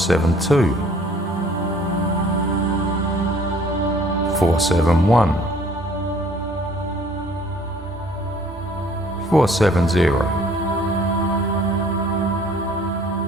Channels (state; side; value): normal; both; correlation 0.56